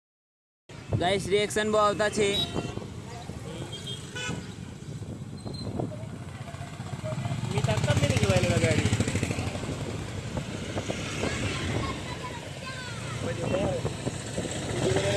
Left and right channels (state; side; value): identical; both; correlation 1.00